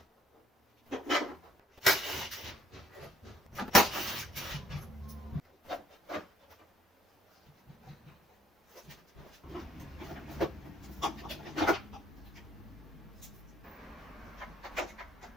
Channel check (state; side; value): normal; both; correlation 0.64